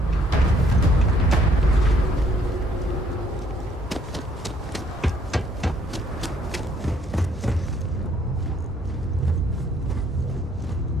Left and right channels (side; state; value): both; normal; correlation 0.65